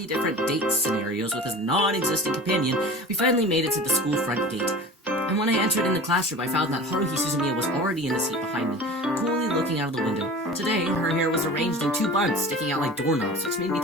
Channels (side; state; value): both; normal; correlation 0.37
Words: different date scenarios with his non-existent companion, we finally made it to the school front gate. And when I entered in the classroom, I found that Haruhi Suzumiya was already in the seat behind me, coolly looking out of the window. Today, her hair was arranged in 2 buns, sticking out like doorknobs, which made me